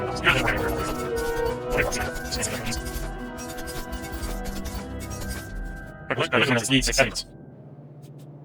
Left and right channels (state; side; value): identical; both; correlation 1.00